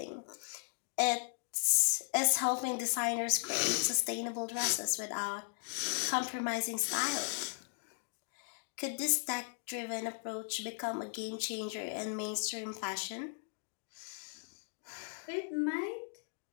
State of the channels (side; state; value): right; silent; digital silence